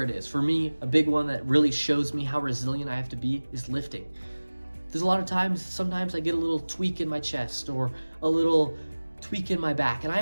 it is. For me, a big one that really shows me how resilient I have to be is lifting. There's a lot of times, sometimes I get a little tweak in my chest or a little tweak in my back, and I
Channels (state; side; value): inverted; both; correlation -1.00